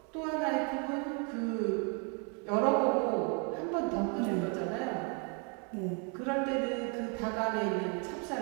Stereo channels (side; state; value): left; quieter; 36.9 dB